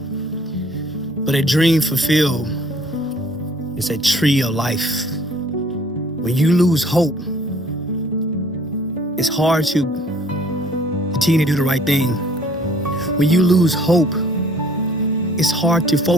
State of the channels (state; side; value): normal; both; correlation 0.57